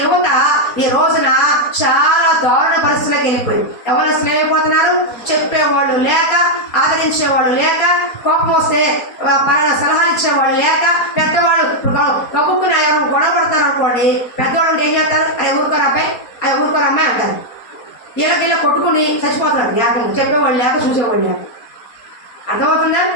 యువత ఈ రోజున చాలా దారుణ పరిస్థితులకు వెళ్ళిపోయింది. ఎవరు అసలు ఏమైపోతున్నారు? చెప్పేవాళ్ళు లేక, ఆదరించేవాళ్ళు లేక, కోపం వస్తే సలహాలు ఇచ్చేవాళ్ళు లేక, పెద్దవాళ్ళు కబుక్కుని ఎవరు గొడవ పడతారు అనుకోండి, పెద్దవాళ్ళు ఏం చేస్తారు? అరే ఊరుకోరు అబ్బాయి, అరే ఊరుకోరు అమ్మాయి అంటారు. వీళ్ళకి కొట్టుకుని చచ్చిపోతున్నారు. లేక చెప్పేవాళ్ళు లేక, చూసేవాళ్ళు లేక. అర్థమవుతుందా?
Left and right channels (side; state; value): right; late; 4.3 ms